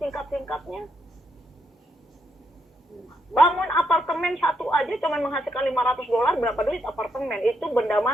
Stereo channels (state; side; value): normal; both; correlation 0.78